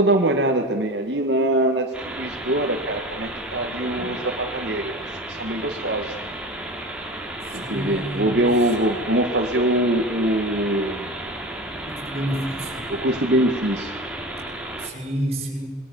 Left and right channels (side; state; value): both; normal; correlation 0.31